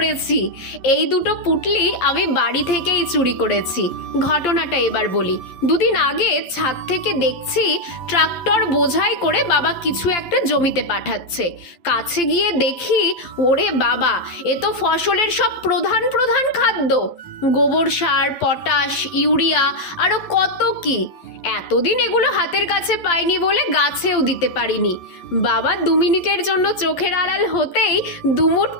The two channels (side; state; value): right; late; 11 ms